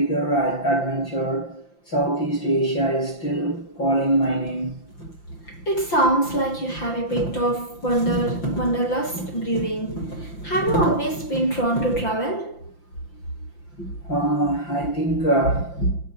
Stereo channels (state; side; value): late; right; 5.8 ms